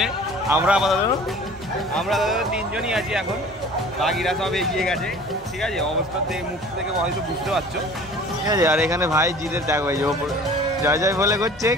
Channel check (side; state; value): both; normal; correlation 0.45